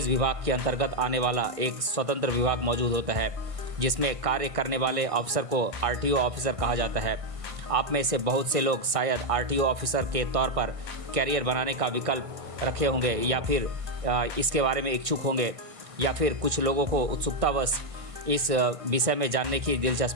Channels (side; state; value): left; late; 1.5 ms